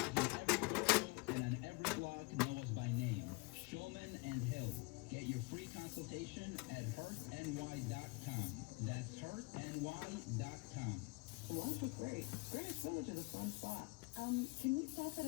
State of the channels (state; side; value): quieter; right; 27.3 dB